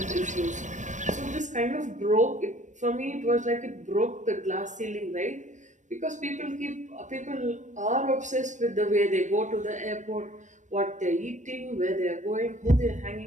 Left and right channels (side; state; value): left; late; 0.35 ms